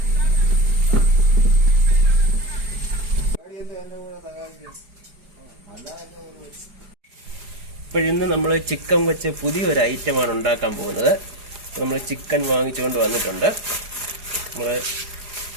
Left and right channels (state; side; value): late; left; 4.8 ms